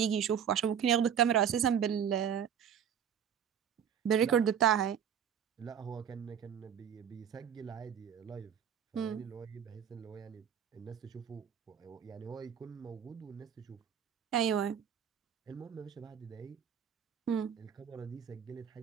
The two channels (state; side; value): quieter; left; 8.5 dB